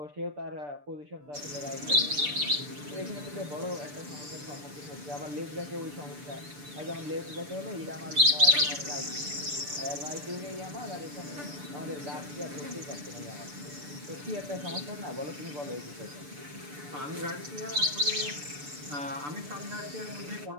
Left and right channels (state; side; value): late; left; 6.8 ms